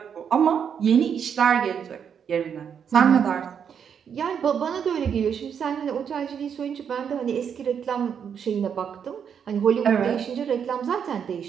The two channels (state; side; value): quieter; left; 7.6 dB